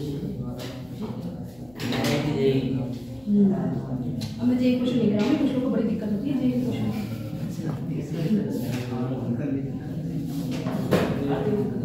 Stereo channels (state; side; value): noise; left; hum, 27 dB below the sound